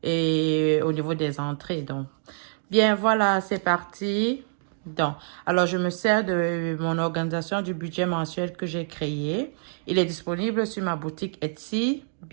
et au niveau des entrées. Donc bien voilà, c'est parti. Donc, alors je me sers de mon organisation du budget mensuel que j'ai créé. Il est disponible sur ma boutique Etsy.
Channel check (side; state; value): left; silent; digital silence